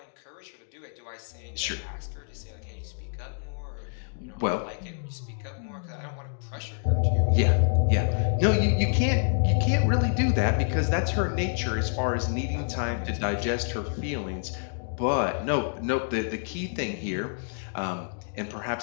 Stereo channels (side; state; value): right; silent; digital silence